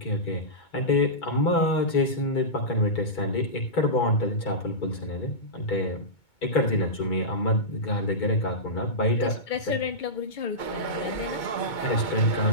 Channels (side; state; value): right; late; 2.2 ms